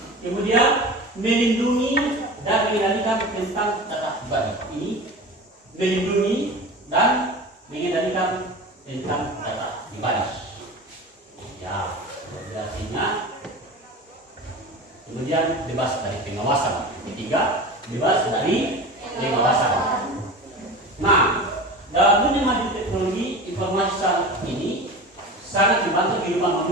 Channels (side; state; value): both; normal; correlation 0.33